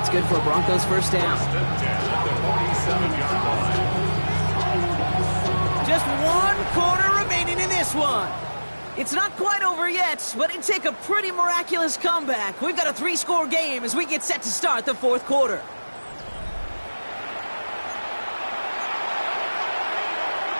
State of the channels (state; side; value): inverted; both; correlation -1.00